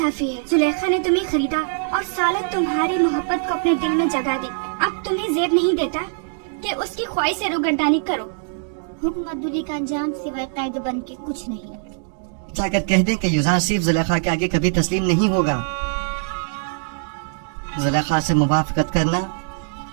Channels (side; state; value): left; silent; digital silence